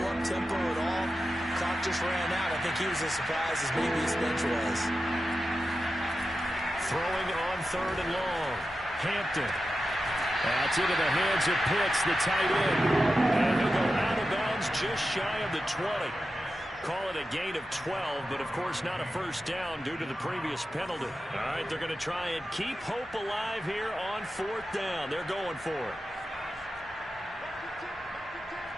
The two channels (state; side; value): normal; both; correlation 0.91